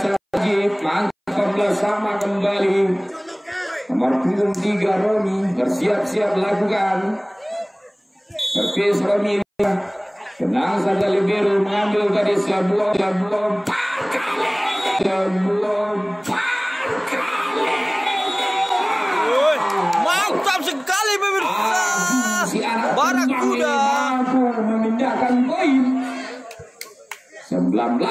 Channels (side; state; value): both; identical; correlation 1.00